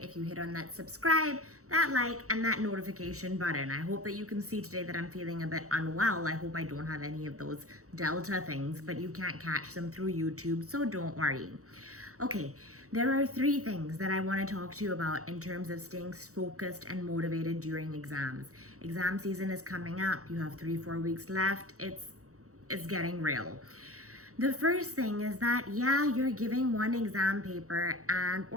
if you hit on that subscribe, that like, and that notification button. I hope that you can see today that I'm feeling a bit unwell. I hope I don't have any of those Delta things, but you can't catch them through YouTube, so don't worry. Okay, there are three things that I want to talk to you about in terms of staying focused and motivated during exams. Exam season is coming up. You have 3-4 weeks left. It's getting real. The first thing is that, yeah, you're giving one exam paper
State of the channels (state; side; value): late; left; 0.65 ms